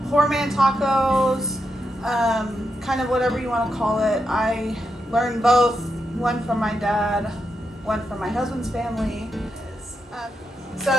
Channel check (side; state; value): both; normal; correlation 0.85